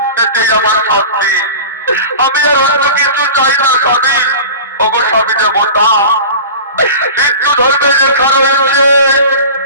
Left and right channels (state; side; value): inverted; both; correlation -0.36